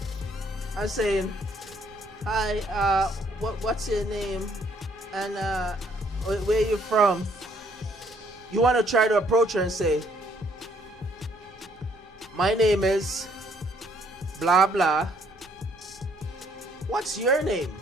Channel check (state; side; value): normal; both; correlation 0.66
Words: and saying, hi, what's your name and where are you from, you want to try to approach her and say, my name is blah blah, what's your name?